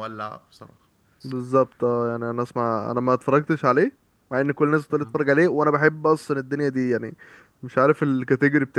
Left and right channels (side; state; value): both; identical; correlation 1.00